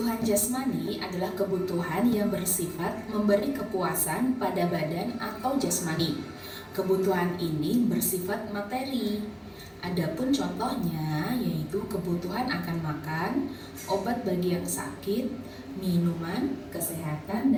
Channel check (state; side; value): identical; both; correlation 1.00